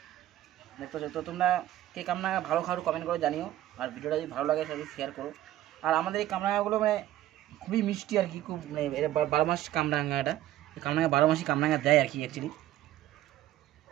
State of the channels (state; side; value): quieter; left; 13.8 dB